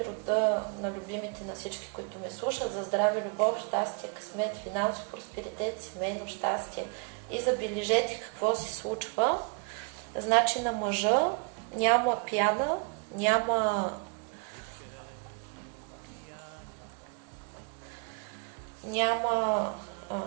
рода на любимите на всички, които ме слушат, за здраве, любов, щастие, късмет, финансов просперитет, семейно щастие. И забележете какво се случва. Значи на мъжа няма пяна, няма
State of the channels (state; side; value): quieter; left; 37.1 dB